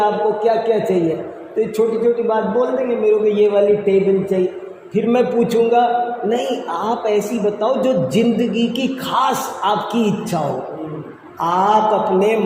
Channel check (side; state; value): both; identical; correlation 1.00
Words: क्या क्या चाहिए, तो छोटी छोटी बात बोल देंगे मेरे को ये वाली टेबल चाहिए। फिर मैं पूछूंगा नहीं आप ऐसी बताओ जो जिंदगी की खास आपकी इच्छा हो। आप अपने